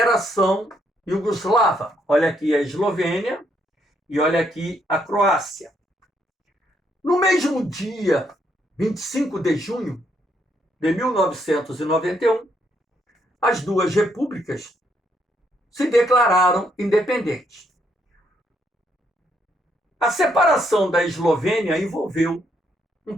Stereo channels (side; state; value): both; normal; correlation 0.74